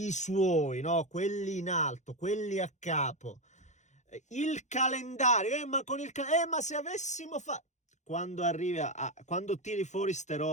suoi, no? Quelli in alto, quelli a capo. Il calendario, ma con il ma se avessimo fatto... Quando arrivi quando tiri fuori ste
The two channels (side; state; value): right; late; 0.34 ms